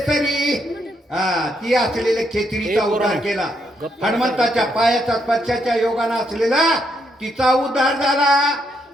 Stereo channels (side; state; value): both; normal; correlation 0.77